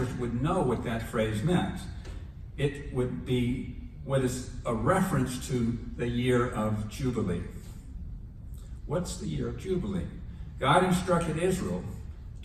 would know what that phrase meant. It would be what is a reference to the year of Jubilee. What's the year of Jubilee? God instructed Israel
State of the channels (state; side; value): identical; both; correlation 1.00